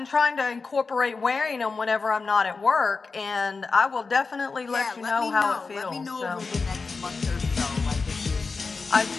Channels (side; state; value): right; quieter; 4.4 dB